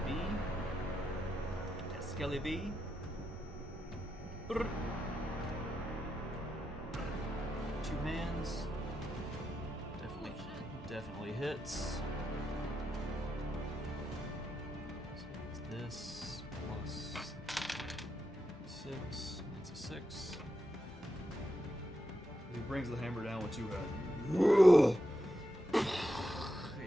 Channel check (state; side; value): normal; both; correlation 0.86